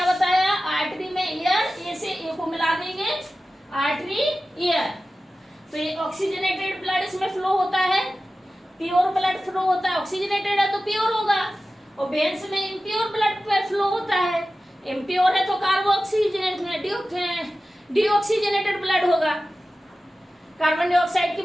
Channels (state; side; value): normal; both; correlation 0.95